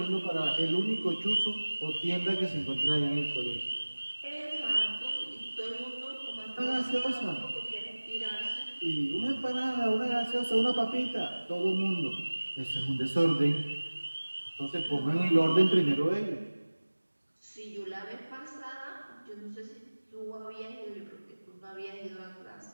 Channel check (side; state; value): both; inverted; correlation -1.00